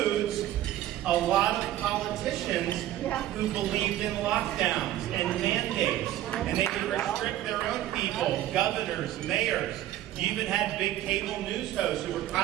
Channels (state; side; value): quieter; left; 13.4 dB